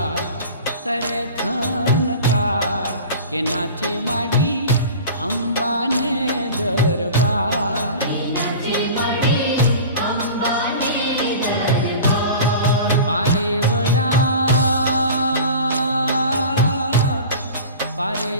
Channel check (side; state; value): both; inverted; correlation -0.37